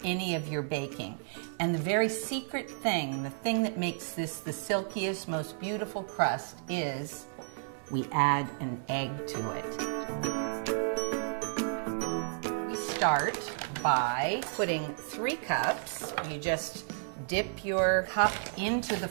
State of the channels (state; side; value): silent; left; 56 dB below the other